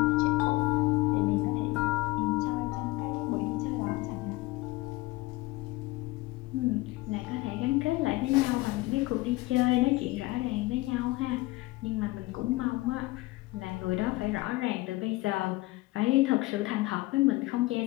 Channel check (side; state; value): right; quieter; 20.4 dB